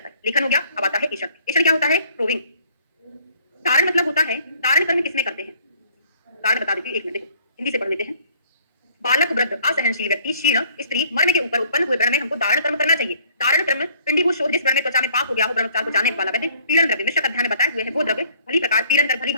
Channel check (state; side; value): inverted; both; correlation -0.58